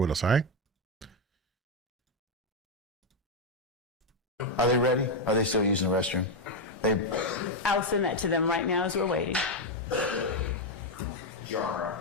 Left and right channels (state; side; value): normal; both; correlation 0.03